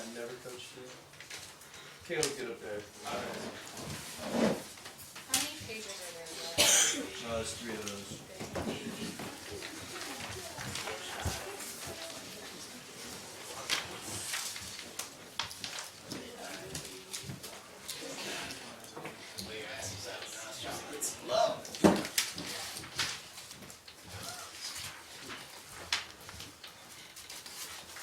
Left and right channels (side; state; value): both; identical; correlation 1.00